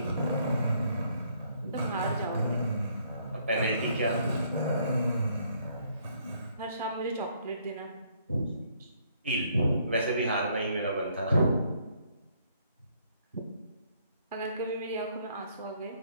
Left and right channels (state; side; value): inverted; both; correlation -0.67